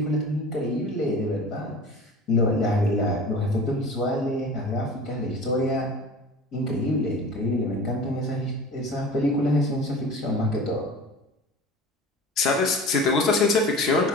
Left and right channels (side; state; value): both; normal; correlation 0.38